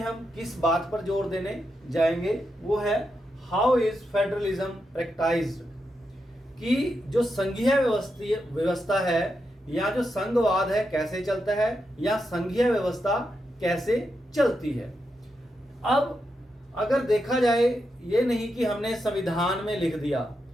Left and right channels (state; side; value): normal; both; correlation 0.85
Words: किस बात पर जोर देने जाएंगे, वो है हाउ इज फेडरलिज्म प्रैक्टाइज्ड, कि जो संघीय व्यवस्था है या जो संघवाद है कैसे चलता है या संघीय व्यवस्था कैसे चलती है। अब अगर देखा जाए, ये नहीं कि हमने संविधान में लिख दिया